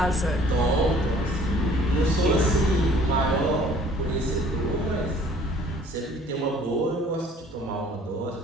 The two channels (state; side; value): normal; both; correlation 0.54